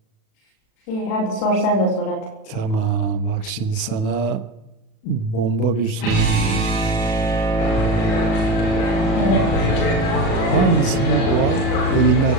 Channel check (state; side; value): late; right; 37 ms